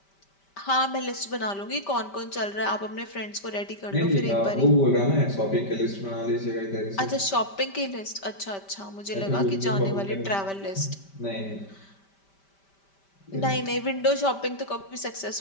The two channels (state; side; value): late; right; 5.1 ms